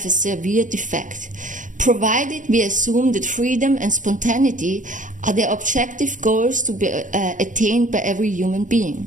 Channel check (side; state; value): left; late; 0.37 ms